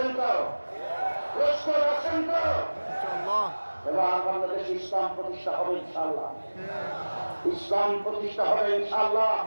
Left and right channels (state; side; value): inverted; both; correlation -1.00